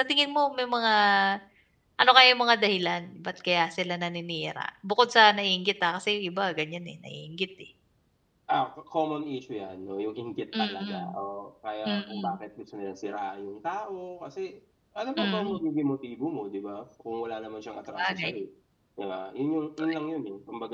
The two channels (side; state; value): both; identical; correlation 1.00